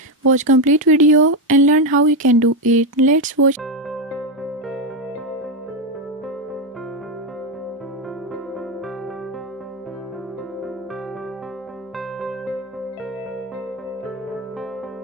Watch complete video and learn how you can do it. Let's watch.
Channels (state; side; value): normal; both; correlation 0.08